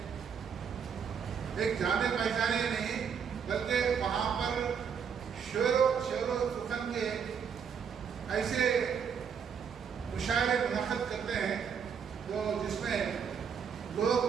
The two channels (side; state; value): left; quieter; 7.0 dB